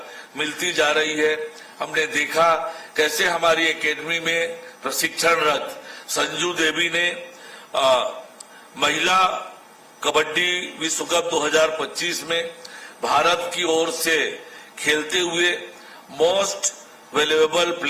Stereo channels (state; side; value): identical; both; correlation 1.00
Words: मिलती जा रही है। हमने देखा कैसे हमारी एकेडमी में प्रशिक्षणरत संजू देवी ने महिला कबड्डी विश्व कप 2025 में भारत की ओर से खेलते हुए मोस्ट वैल्यूएबल